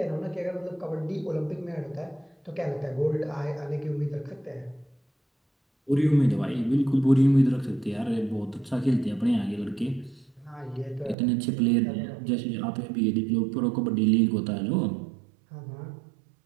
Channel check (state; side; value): drops out; left; at 11.2 s